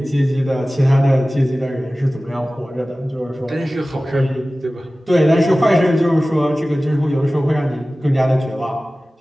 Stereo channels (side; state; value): both; normal; correlation 0.97